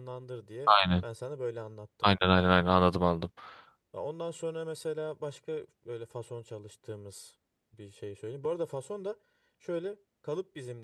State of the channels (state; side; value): identical; both; correlation 1.00